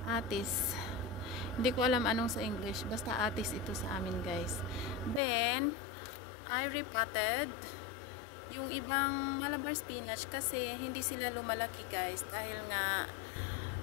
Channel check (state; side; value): drops out; right; at 5.2 s